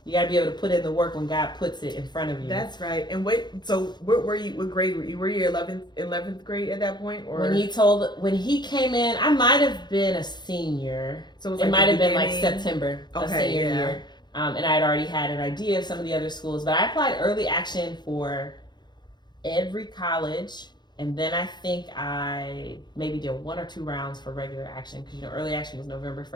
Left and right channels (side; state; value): right; late; 0.21 ms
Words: got to be able to put in the work when God puts it in front of you. That's right. And so what grade were you? Were you 11th grade at that point? Or when he came in, I might have been a senior. So it might have been like September of senior year. And I had already had an idea of some of the other schools, but I applied early action for every college. And then I think I maybe did 1 or 2 rounds for regular action, because early action was November